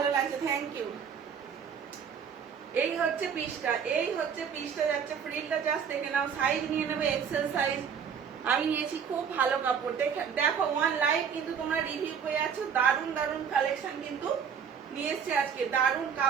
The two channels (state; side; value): quieter; left; 7.2 dB